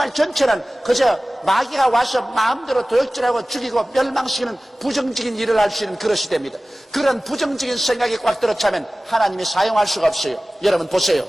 전체는 그저 마귀가 와서 마음대로 도역질하고 죽이고 멸망시키는 부정적인 일을 할 수 있는 그릇이 됩니다. 그런 부정적인 생각이 꽉 들어차면 하나님이 사용할 수가 없어요. 여러분 보세요.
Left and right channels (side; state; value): both; normal; correlation 0.97